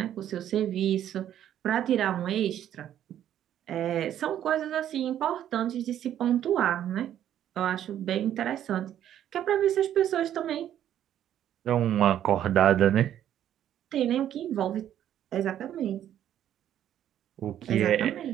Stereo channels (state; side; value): quieter; left; 10.9 dB